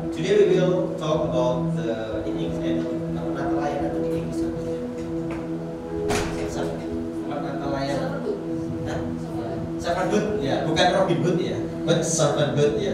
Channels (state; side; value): identical; both; correlation 1.00